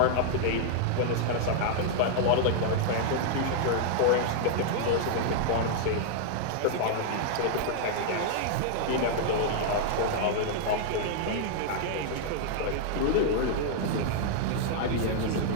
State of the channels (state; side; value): different; both; correlation -0.01